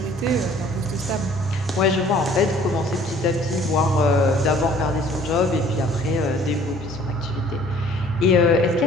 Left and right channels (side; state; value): both; normal; correlation 0.54